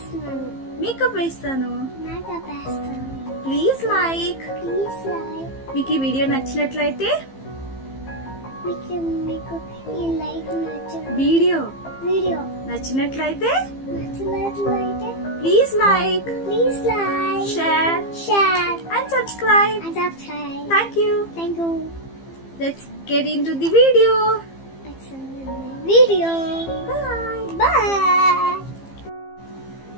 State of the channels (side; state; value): right; late; 15 ms